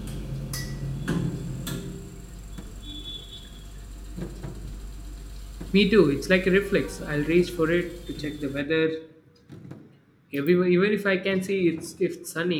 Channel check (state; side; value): identical; both; correlation 1.00